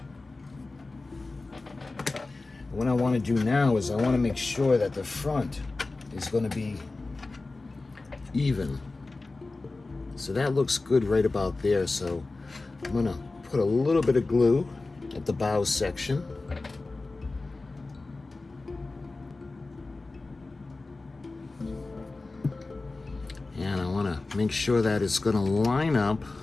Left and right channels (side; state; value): right; quieter; 3.4 dB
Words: And what I want to do now is I want to make sure that the front is going to be even. So that looks good right about there. So I'm going to put a little bit of glue at the bow section. And I want to make sure that it's going to line up.